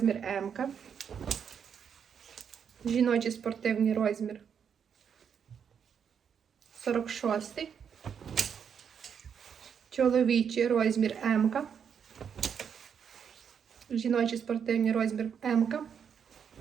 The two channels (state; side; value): quieter; left; 7.5 dB